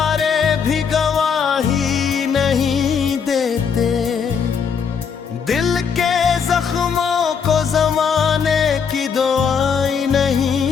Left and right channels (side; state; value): right; quieter; 6.5 dB